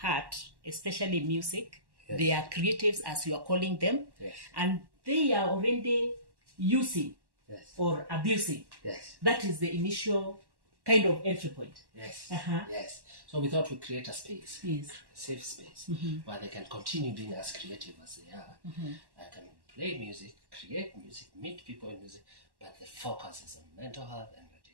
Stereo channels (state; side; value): late; left; 1.1 ms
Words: especially music. Yes. They are creatives, as you are calling them. Yes. And they are already using, yes. or abusing. Yes. That is the initial kind of entry point. Yes. Uh-huh. Yes. So we thought we'd create a space, yes. a safe space, mm-hmm. where they can continue being as creative as they are. Mm-hmm. I can play music, create music, meet people in music, but the focus is on mental health and